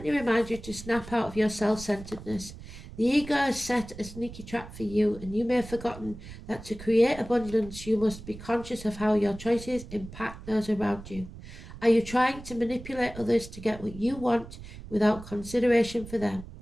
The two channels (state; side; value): noise; right; rumble, 14 dB below the sound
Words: reminds you to snap out of your self-centeredness. The ego has set a sneaky trap for you, and you may have forgotten that to create abundance, you must be conscious of how your choices impact those around you. Are you trying to manipulate others to get what you want without consideration for them?